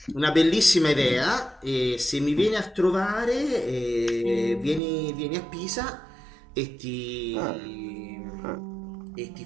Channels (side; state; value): left; drops out; at 4.8 s